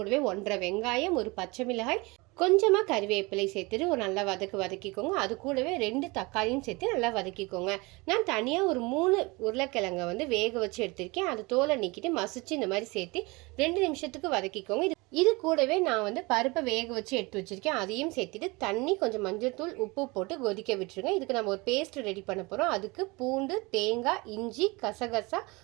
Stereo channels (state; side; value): quieter; left; 25.1 dB